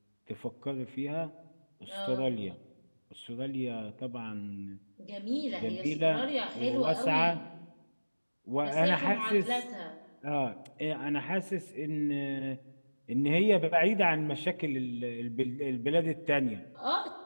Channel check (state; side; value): inverted; both; correlation -1.00